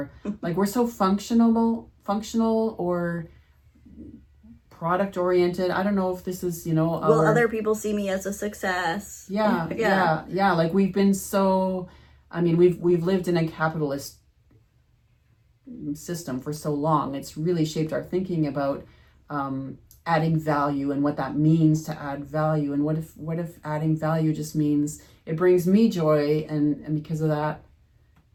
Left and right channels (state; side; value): identical; both; correlation 1.00